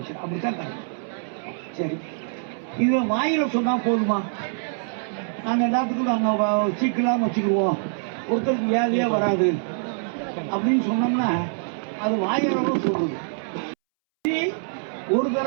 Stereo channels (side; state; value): left; silent; 62 dB below the other